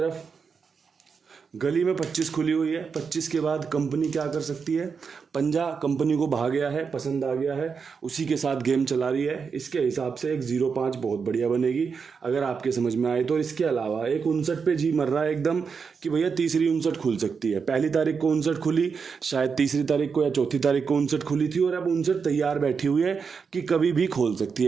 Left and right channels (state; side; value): quieter; left; 5.7 dB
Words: गली में 25 खुली हुई है। 25 के बाद कंपनी क्या कर सकती है? पंजा कंपनी को भा गया है, पसंद आ गया है, उसी के साथ गेम चला रही है। इसके हिसाब से एक 0-5 बहुत बढ़िया बनेगी अगर आपके समझ में आए तो। इसके अलावा एक 59 पे जी मर रहा है एकदम कि भैया तीसरी 59 खुल सकती है। पहली तारीख को 59 खुली, शायद तीसरी तारीख को या चौथी तारीख को 59 खुली थी, और अब 59 तैयार बैठी हुई है कि कभी भी खोल सकती